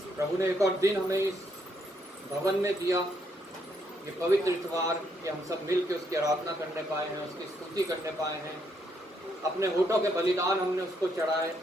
प्रभु ने एक और दिन हमें इस भवन में दिया, ये पवित्र इतवार कि हम सब मिल के उसकी आराधना करने पाए हैं, उसकी स्तुति करने पाए हैं। अपने होठों के बलिदान हमने उसको चढ़ाए,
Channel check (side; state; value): both; normal; correlation 0.74